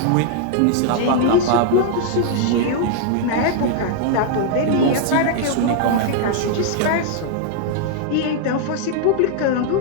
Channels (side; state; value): both; different; correlation 0.00